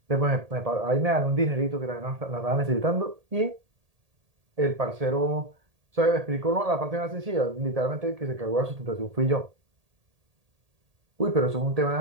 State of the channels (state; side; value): late; left; 1.8 ms